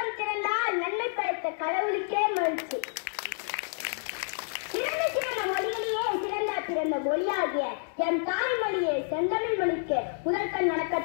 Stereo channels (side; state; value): right; silent; digital silence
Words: திறந்தால் நன்மை படைத்த கடவுளுக்கே மகிழ்ச்சி. சிறந்த மொழிகளிலே சிறந்த மொழியாகிய என் தாய்மொழியை செந்தமிழ் மொழிக்கு முதற்கண்